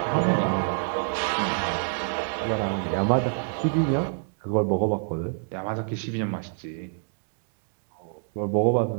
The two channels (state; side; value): silent; left; 58 dB below the other